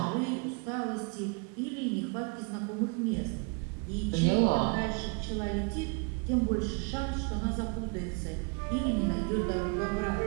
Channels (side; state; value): left; quieter; 34.1 dB